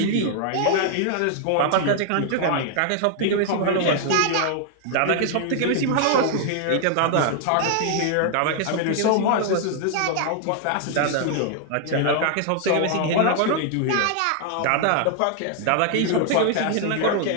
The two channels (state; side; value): different; both; correlation 0.00